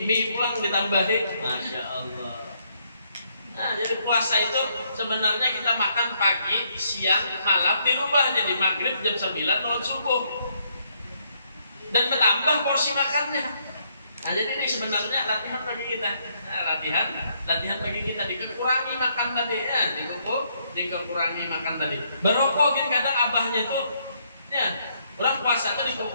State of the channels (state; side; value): inverted; both; correlation -0.72